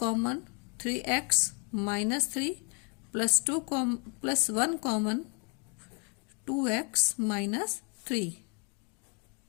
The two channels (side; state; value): right; quieter; 36.3 dB